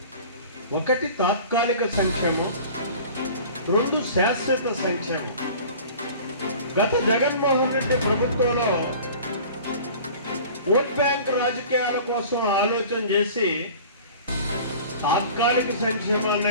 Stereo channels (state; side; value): inverted; both; correlation -0.43